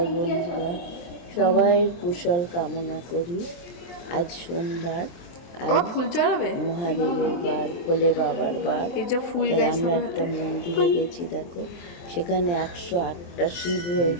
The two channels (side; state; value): right; late; 23 ms